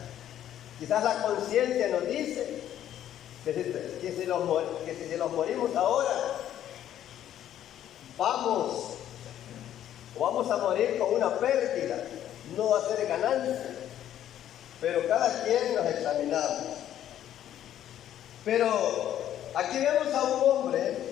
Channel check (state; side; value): quieter; right; 11.2 dB